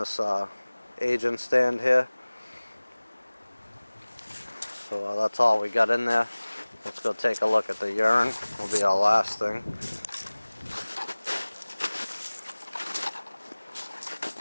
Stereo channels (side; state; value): both; inverted; correlation -1.00